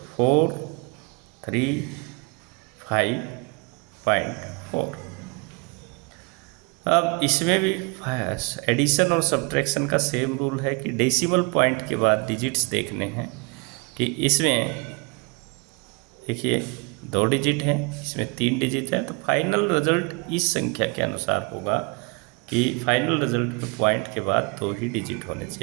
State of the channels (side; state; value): left; quieter; 31.3 dB